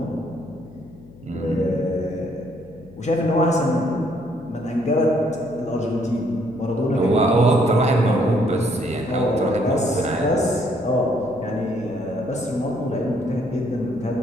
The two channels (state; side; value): noise; left; hum, 21 dB below the sound